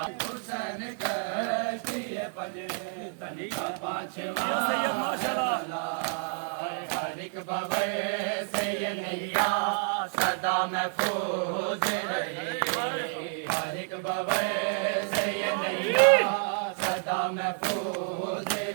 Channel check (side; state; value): left; silent; 58 dB below the other